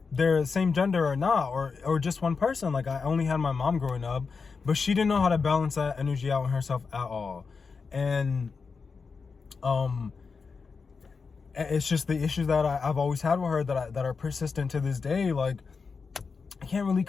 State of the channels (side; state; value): right; quieter; 5.0 dB